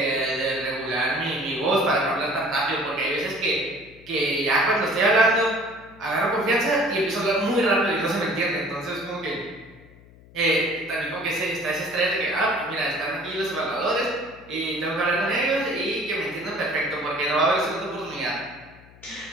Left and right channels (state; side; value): noise; left; hum, 23 dB below the sound